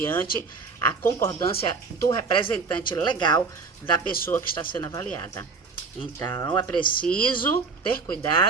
a concordância do representante legal da pessoa que está sendo avaliada. Então, é preciso ter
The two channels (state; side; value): quieter; left; 4.5 dB